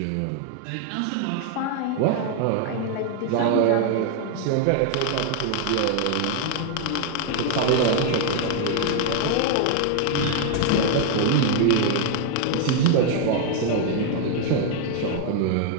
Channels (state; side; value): different; both; correlation 0.00